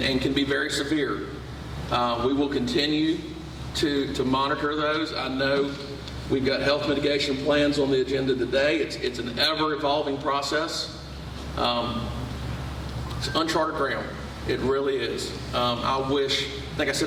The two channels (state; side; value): identical; both; correlation 1.00